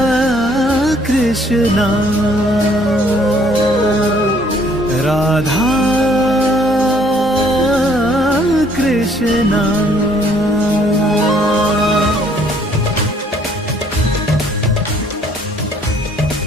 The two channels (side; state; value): both; normal; correlation 0.62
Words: कृष्णा राधा कृष्णा।